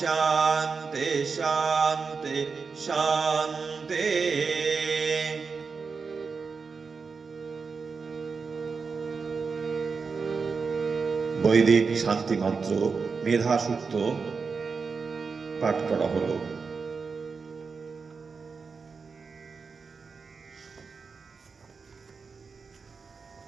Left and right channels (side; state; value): left; quieter; 5.0 dB